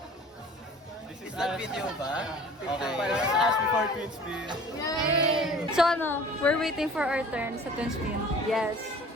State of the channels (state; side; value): normal; both; correlation 0.46